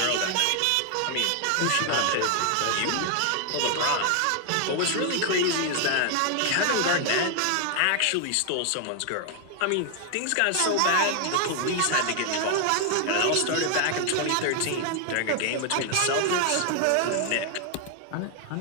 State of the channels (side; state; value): both; different; correlation 0.00